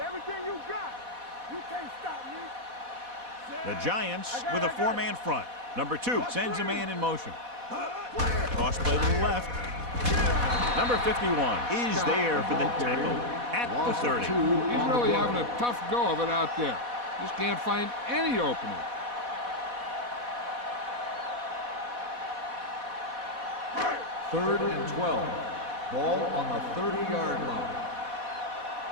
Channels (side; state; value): left; late; 4.1 ms